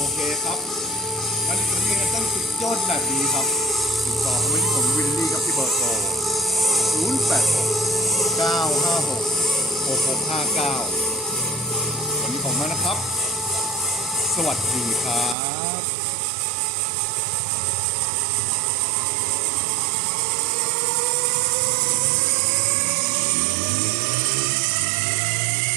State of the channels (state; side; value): drops out; left; at 15.4 s